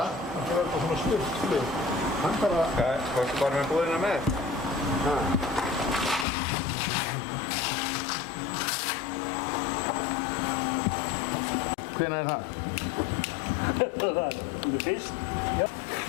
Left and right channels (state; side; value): drops out; right; at 6.2 s